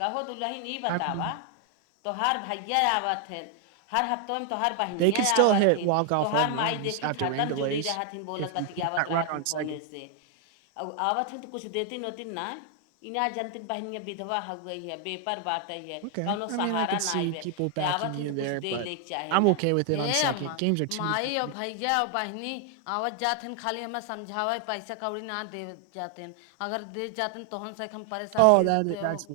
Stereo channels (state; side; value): different; both; correlation 0.00